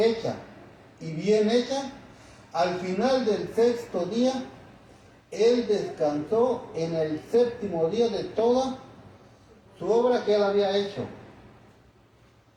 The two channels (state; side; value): identical; both; correlation 1.00